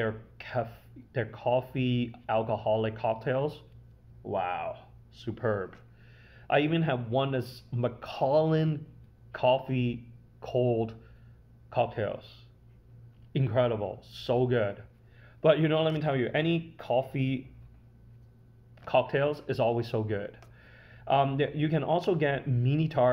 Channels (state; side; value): identical; both; correlation 1.00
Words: coffee alcoholic cocktails, wow, superb. I even have one that's Macallan coffee cold cocktails. Incredible, so good. But let me tell you, any coffee cocktails is always so good. You can also get mini